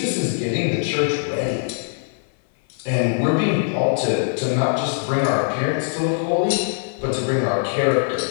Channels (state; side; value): silent; right; 59 dB below the other